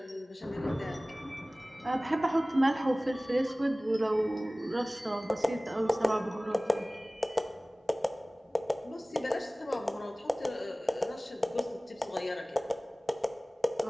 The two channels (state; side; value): normal; both; correlation 0.98